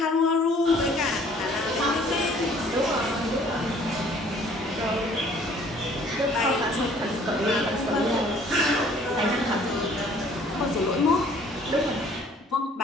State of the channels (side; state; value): both; normal; correlation 0.56